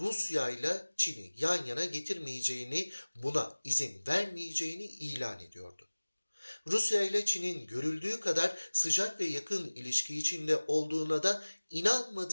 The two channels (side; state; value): both; inverted; correlation -1.00